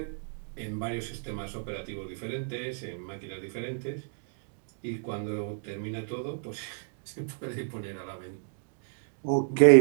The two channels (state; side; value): silent; left; digital silence